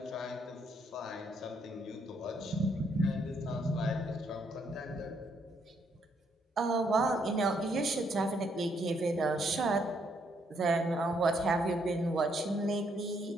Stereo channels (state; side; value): normal; both; correlation 0.72